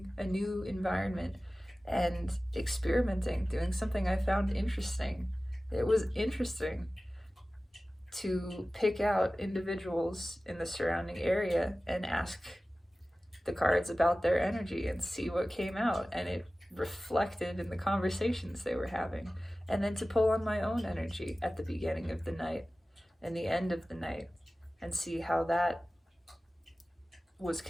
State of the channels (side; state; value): both; normal; correlation 0.96